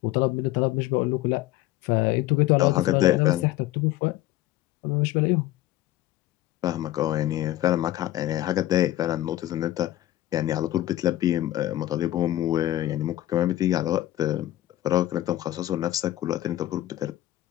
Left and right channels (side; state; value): right; quieter; 14.6 dB